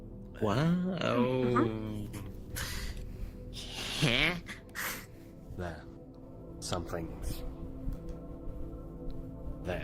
Wow. Huh? There. Something's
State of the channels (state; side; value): identical; both; correlation 1.00